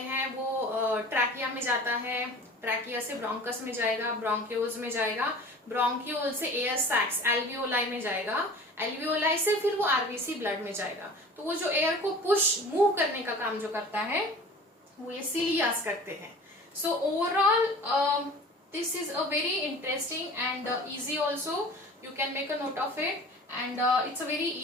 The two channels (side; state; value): both; normal; correlation 0.42